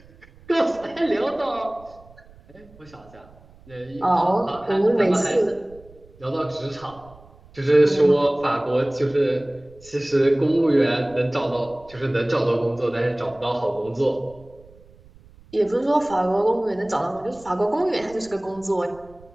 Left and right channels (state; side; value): noise; right; rumble, 25 dB below the sound